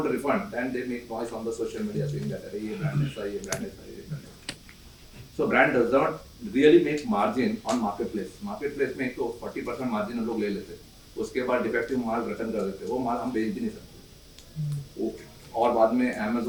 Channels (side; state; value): both; identical; correlation 1.00